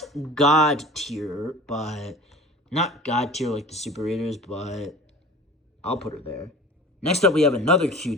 God tier, but... Not God tier like the super readers, but I'll put her there. Next up, we have another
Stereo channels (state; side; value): normal; both; correlation 0.39